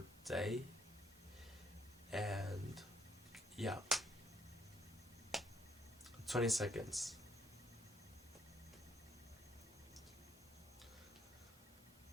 day, and yeah, 20 seconds.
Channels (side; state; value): both; normal; correlation 0.71